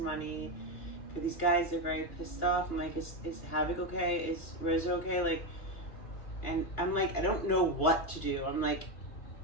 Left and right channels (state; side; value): late; right; 2.9 ms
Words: for these guys. They're very pissed off. I'm like, is Havoc okay? Is Rizzo okay? Like, and I'm like, I don't know what to do. I'm like,